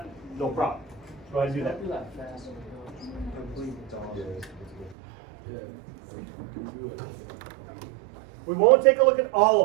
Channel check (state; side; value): drops out; left; at 5.0 s